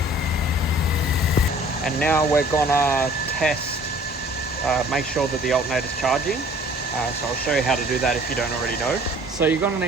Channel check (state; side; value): normal; both; correlation 0.52